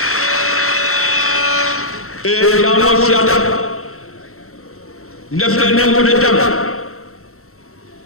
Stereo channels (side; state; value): right; late; 0.63 ms